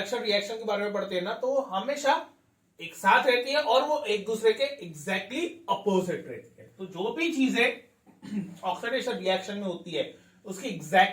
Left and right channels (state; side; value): identical; both; correlation 1.00